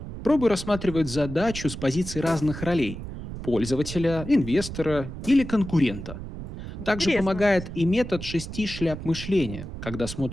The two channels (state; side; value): noise; right; rumble, 9 dB below the sound